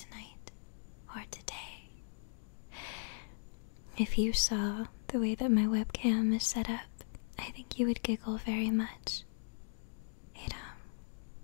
or today. If you saw the way that my webcam is set up, I think you would giggle very much.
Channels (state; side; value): silent; right; digital silence